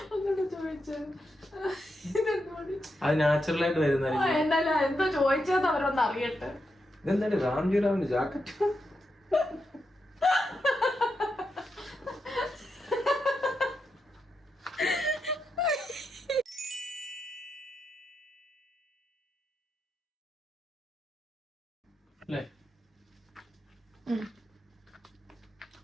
ഒന്നുകൂടെ ചോദിച്ചു. അത് നാച്ചുറൽ ആയിട്ട് വരുന്ന എന്തായാലും എന്തോ ചോദിച്ചത് അവരൊന്ന് അറിയട്ടെ. ഇതെന്താണ് രാംജിറാവിന്റെ ജാക്കറ്റ്? അല്ലേ?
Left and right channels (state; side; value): normal; both; correlation 0.85